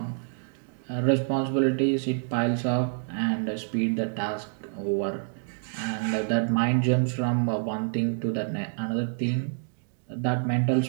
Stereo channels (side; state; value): left; silent; 60 dB below the other